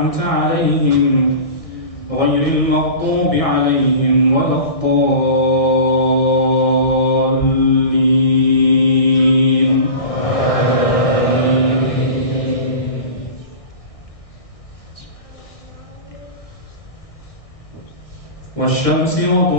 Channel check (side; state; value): right; late; 1.6 ms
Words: alayhim غير المغضوب عليهم ولا الضالين والشمس